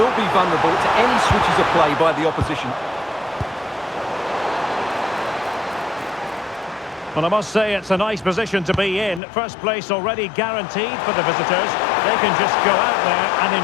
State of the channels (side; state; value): right; drops out; at 9.2 s